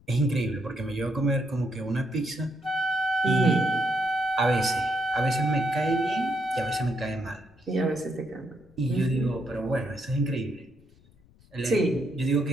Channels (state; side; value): noise; left; rumble, 28 dB below the sound